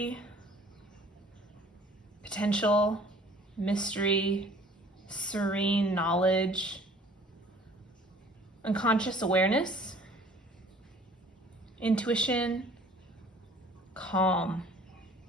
potential, mystery, serene knowledge, unconscious awareness, intuition, calm,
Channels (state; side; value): normal; both; correlation 0.52